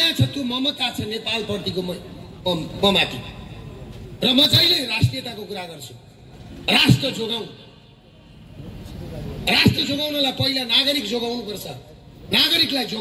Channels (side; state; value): both; identical; correlation 1.00